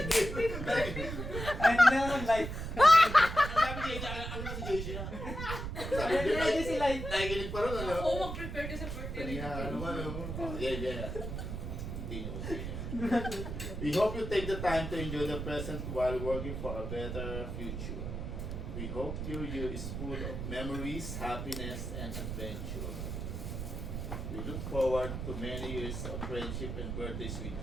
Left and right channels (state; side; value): noise; right; rumble, 5 dB below the sound